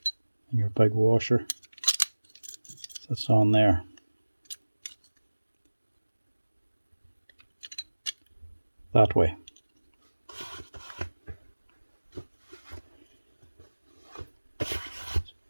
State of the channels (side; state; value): both; inverted; correlation -1.00